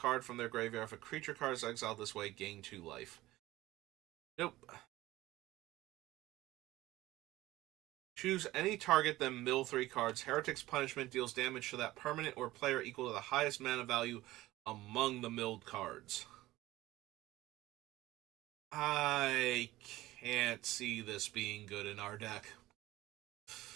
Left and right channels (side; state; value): left; quieter; 17.1 dB